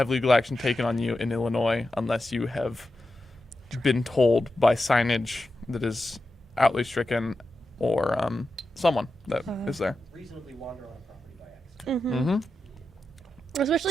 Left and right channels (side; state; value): both; normal; correlation 0.90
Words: legal action taken on you in Illinois unless you have been told by signage that is outly stricken or someone that is there. Reasonably wander on a property by accident.